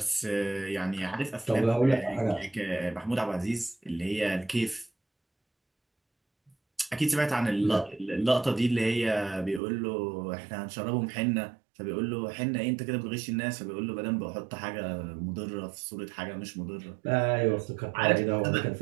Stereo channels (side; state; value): left; drops out; at 9.6 s